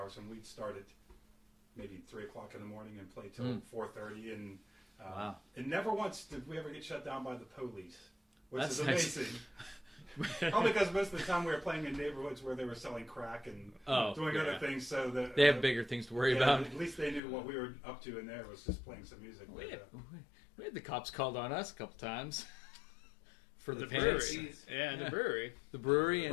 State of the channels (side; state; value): right; drops out; at 17.2 s